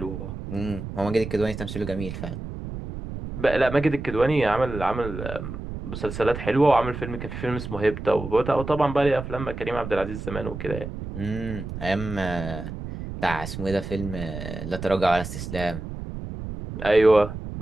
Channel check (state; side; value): noise; right; rumble, 8 dB below the sound